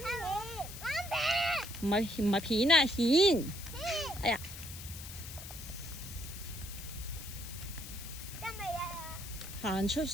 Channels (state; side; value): noise; left; hiss, 11 dB below the sound